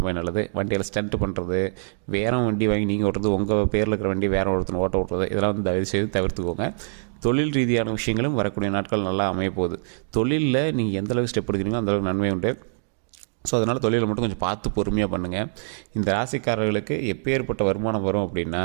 நல்லது. வண்டியில் ஸ்டண்ட் பண்ணுறது, வேறு வண்டி வாங்கி நீங்கள் ஓட்டுறது, உங்கள் பேரில் இருக்கிற வண்டி வேறு ஒருத்தர் ஓட்டுறது, இதெல்லாம் வந்து தயவு செய்து தவிர்த்துக்கோங்க. தொழில் ரீதியான விஷயங்களும் வரக்கூடிய நாட்கள் நல்லா அமைய போகுது. தொழிலில் நீங்கள் எந்தளவுக்கு ஸ்டெப் எடுக்கிறீங்களோ அந்தளவுக்கு நன்மை உண்டு. ஸோ அதனால் தொழிலை மட்டும் கொஞ்சம் பார்த்து பொறுமையாக பண்ணுங்கள். இந்த ராசிக்காரர்களுக்கு எப்பேற்பட்ட வருமானம் வரும் அப்படின்னா,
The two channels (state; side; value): silent; left; digital silence